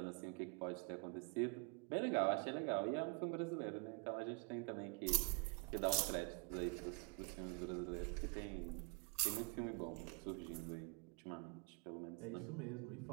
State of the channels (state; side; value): quieter; left; 32.9 dB